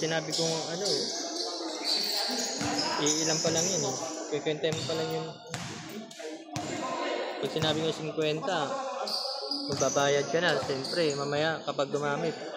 sinabi kong ano, iilan pa lang yun eh. Kikwenta mo pa lang yung... Pag sinabi ko 50, magbabayad ka na. Siyempre, mamaya kapag gumamit,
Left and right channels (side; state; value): both; identical; correlation 1.00